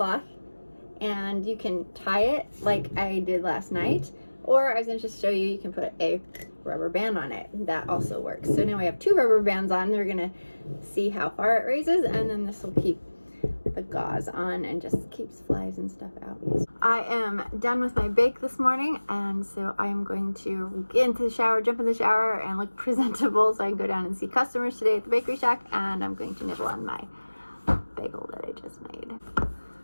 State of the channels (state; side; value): inverted; both; correlation -1.00